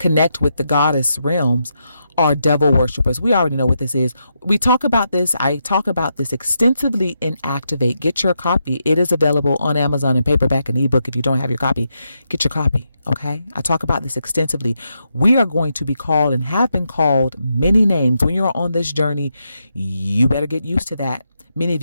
with the goddess realms are devil worshippers. We already know what this is. We talk about this. I talk about this extensively in Activate. Get your copy. It is available on Amazon in paperback and ebook. If you don't have your copy, get your copy. Okay. I talk about this extensively. We are going to be called and have been called many names. When you're on this journey, you better get used to that. Many of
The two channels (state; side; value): inverted; both; correlation -0.83